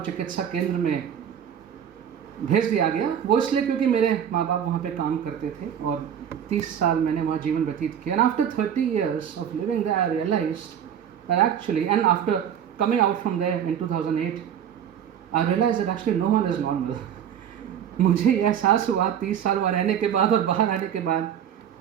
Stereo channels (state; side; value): quieter; left; 9.0 dB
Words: केंद्र में भेज दिया गया। वो इसलिए क्योंकि मेरे माँ बाप वहाँ पे काम करते थे और 30 साल मैंने वहाँ जीवन व्यतीत किया। And after 30 years of living there, I realized that actually, and after coming out from there in 2008, I realized that actually no one is normal. मुझे यह एहसास हुआ 30 साल वहाँ रहने के बाद और बाहर आने के बाद